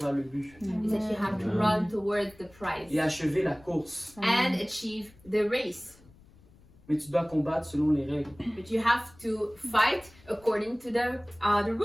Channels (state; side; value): noise; left; rumble, 26 dB below the sound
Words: le but is that you have to run towards the prize et achever la course. and achieve the race. Mais tu dois combattre selon les règles. But you have to fight according to the